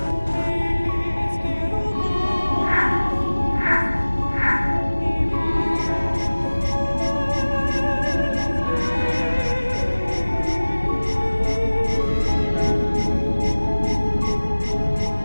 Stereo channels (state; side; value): inverted; both; correlation -1.00